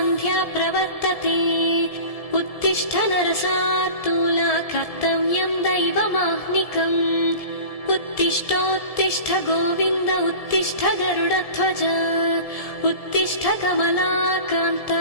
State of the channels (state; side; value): late; right; 1.7 ms